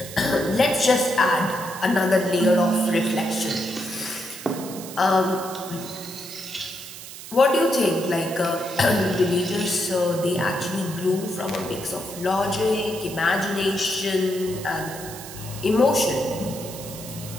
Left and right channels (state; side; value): noise; right; hiss, 13 dB below the sound